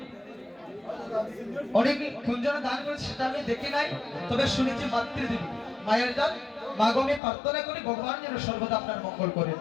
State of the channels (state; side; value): drops out; right; at 7.2 s